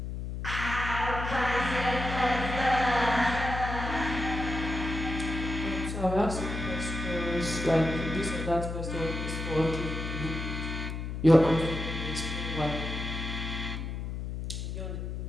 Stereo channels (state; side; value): noise; left; hum, 5 dB below the sound